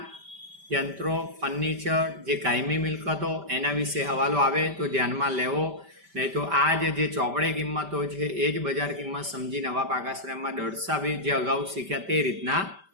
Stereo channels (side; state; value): left; late; 5.1 ms